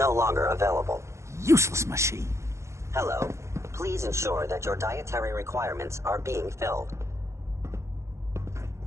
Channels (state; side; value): late; left; 0.14 ms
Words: longer available. Useless machine. Hello. Please ensure that your dietary requirements are being filled.